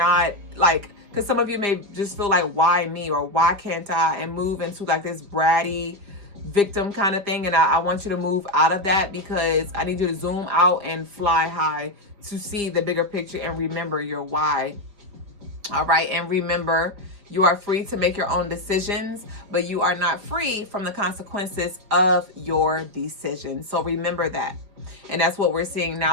like, because some of you may just feel like, why me, or why can't I, and move into like this bratty victim kind of thing. And I want you to move out of that, because I need you to zoom out and fly high to see the bigger picture and remember your why. All right. And remember, you are free to make your own decisions, but you are not free from the consequences of your decisions. So remember that. And that's what we're seeing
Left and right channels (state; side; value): late; left; 5.1 ms